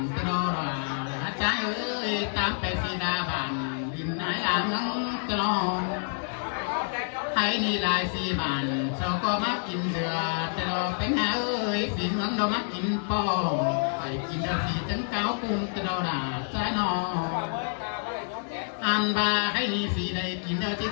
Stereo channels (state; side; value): silent; right; digital silence